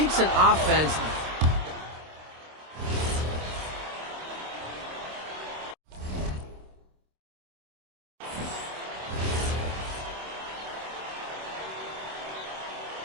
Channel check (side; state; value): left; late; 26 ms